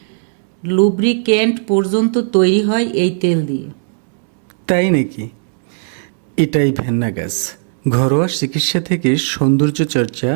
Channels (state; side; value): silent; left; 69 dB below the other